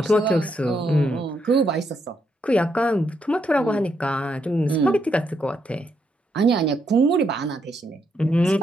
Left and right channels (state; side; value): normal; both; correlation 0.78